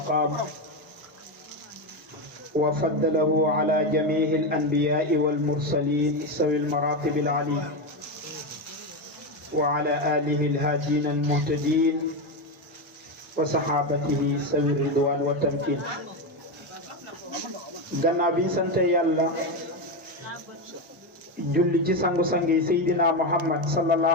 وفضله على جميع الأنبياء والمرسلين سوي المراتب العليا وعلى آله الهادين المهتدين وصحابته سوي الرضوان والتمكين. gannaaw bi ñu sant yàlla julli ci sangu-sangi Seydina Muhammad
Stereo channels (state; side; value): normal; both; correlation 0.12